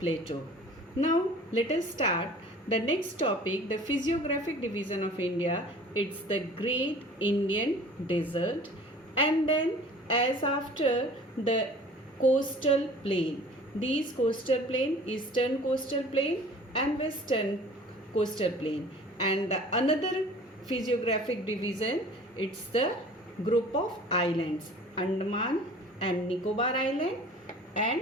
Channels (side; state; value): both; normal; correlation 0.46